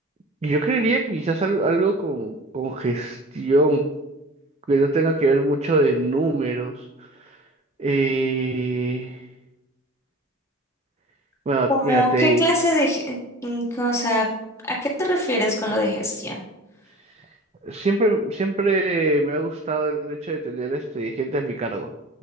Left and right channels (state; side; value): normal; both; correlation 0.41